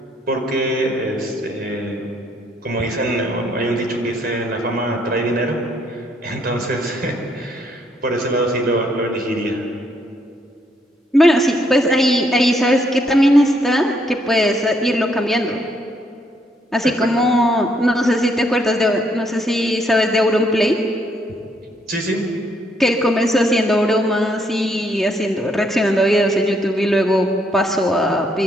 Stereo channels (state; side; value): normal; both; correlation 0.71